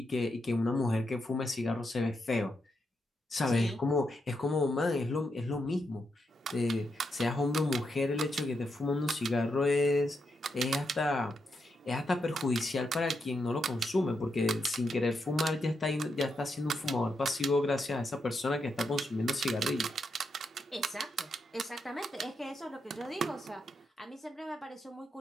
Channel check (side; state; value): both; normal; correlation 0.83